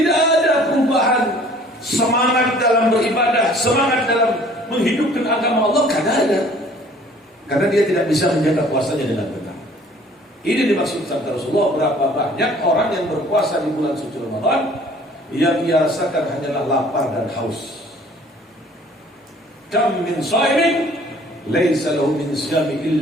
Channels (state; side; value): normal; both; correlation 0.53